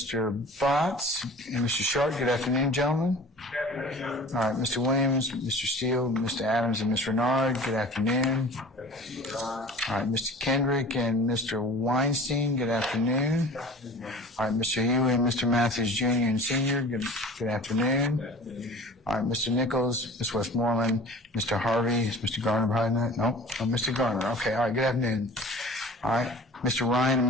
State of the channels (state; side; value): normal; both; correlation 0.42